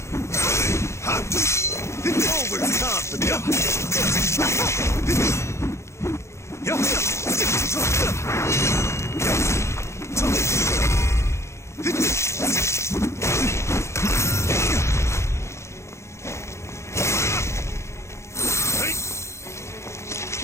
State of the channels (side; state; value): right; late; 0.13 ms